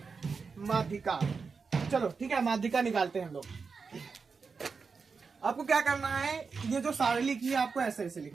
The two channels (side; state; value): left; quieter; 5.0 dB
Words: माध्यिका। चलो ठीक है, माध्यिका निकालते हैं हम लोग। आपको क्या करना है, ये जो सारणी लिखी है आपको ऐसे ऐसे